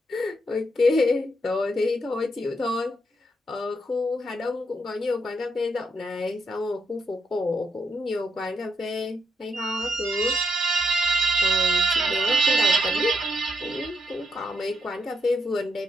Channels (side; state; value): both; normal; correlation 0.79